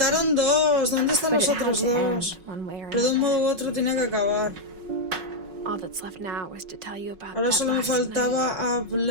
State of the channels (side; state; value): left; late; 5.4 ms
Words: dos. ¿Dónde están But los it had otros to end dos? one way or Pero de un another. modo u otro tenía que acabar. All that's left now was to tell you about Ahora that solo me last night. faltaba